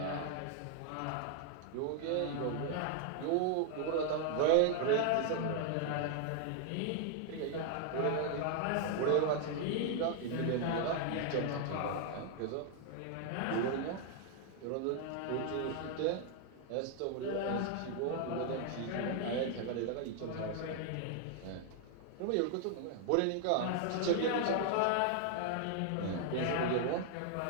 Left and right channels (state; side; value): different; both; correlation 0.00